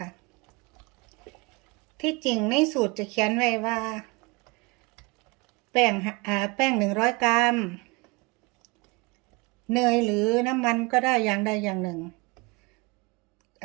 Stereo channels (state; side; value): quieter; left; 26.6 dB